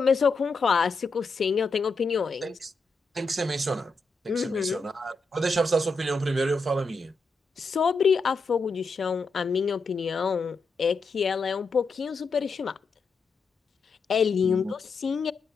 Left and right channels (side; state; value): right; quieter; 3.7 dB